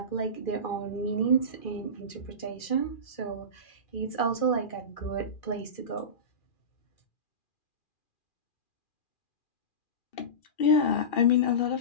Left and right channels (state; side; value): late; right; 2.4 ms